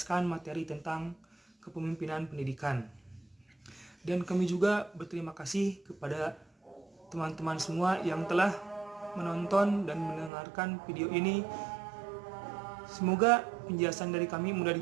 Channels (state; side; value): drops out; left; at 10.3 s